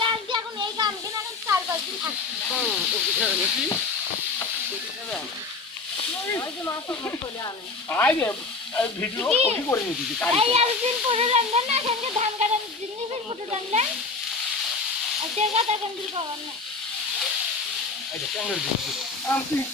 আনছি এখন এই গান কিনা এখন 4-5 দিন থাকছি ভিডিও কপি করে নিয়েছি এই একদিন পরে রান্না না সঙ্গে ধান কাটার জিনিসের ফটো রান্না আচ্ছা কথা কন্ট্রোল করব না আচ্ছা ক্যামেরা দিচ্ছি আমি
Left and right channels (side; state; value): right; quieter; 4.0 dB